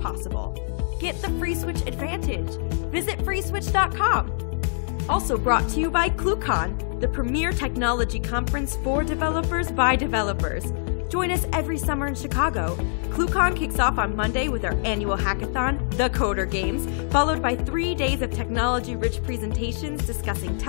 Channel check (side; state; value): right; silent; digital silence